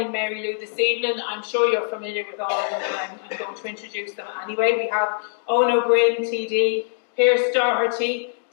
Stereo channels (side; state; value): right; silent; digital silence